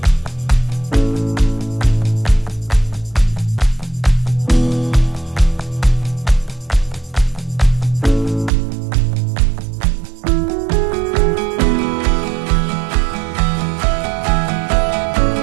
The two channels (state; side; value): drops out; left; at 8.5 s